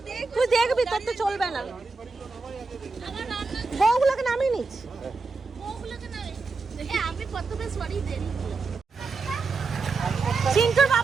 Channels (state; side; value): quieter; left; 4.2 dB